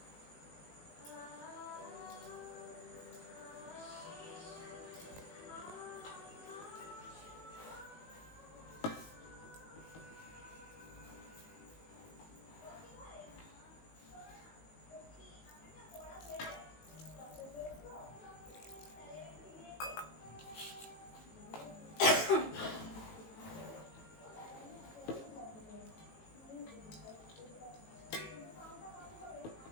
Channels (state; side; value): late; right; 18 ms